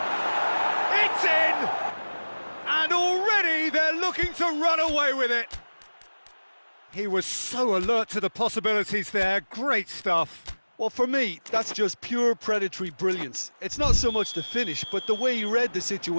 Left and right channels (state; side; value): inverted; both; correlation -1.00